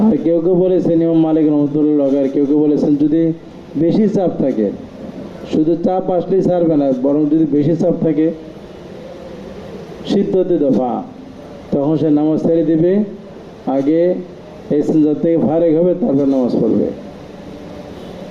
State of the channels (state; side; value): identical; both; correlation 1.00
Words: আর কেউ কেউ বলেছেন ইমাম মালিক রহমতুল্লাহ, আর কেউ কেউ বলেছেন যদি বেশি চাপ থাকে, শুধু চাপ আসলেই ছাড়বে না, বরং যদি বেশি চাপ থাকে সিদ্ধতে দফা, তখন সে নামাজ ছেড়ে দিবে, আগে ইস্তিনজা থেকে ফারেক হবে, তারপর নামাজ পড়বে।